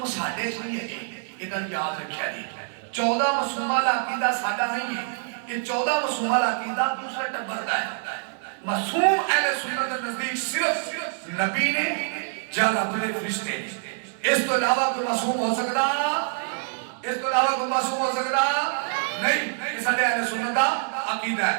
ساڈے چ نہیں ہے یہ گل یاد رکھیا جی 14 مسلمہ والا عقیدہ ساڈا نہیں ہے یہ 14 معصومہ عقیدہ دوسرے ٹبر دا ہے معصوم اہل سنت کے نزدیک صرف نبی نے یا رب دے فرشتے اس تو علاوہ کوئی معصوم ہو سکتا اس تو علاوہ کوئی معصوم ہو سکتا نہیں یہ سارے اہل سنت دا عقیدہ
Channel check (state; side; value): silent; left; digital silence